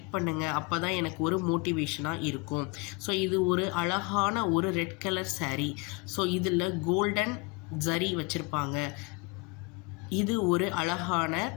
பண்ணுங்கள், அப்போ தான் எனக்கு ஒரு மோட்டிவேஷனாக இருக்கும். ஸோ இது ஒரு அழகான ஒரு ரெட் கலர் சாரீ. ஸோ இதில் கோல்டன் ஜரி வச்சுருப்பாங்க. இது ஒரு அழகான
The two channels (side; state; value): right; quieter; 28.1 dB